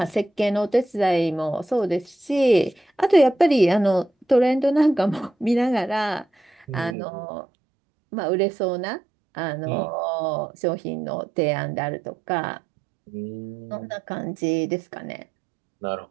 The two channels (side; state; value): left; drops out; at 7.0 s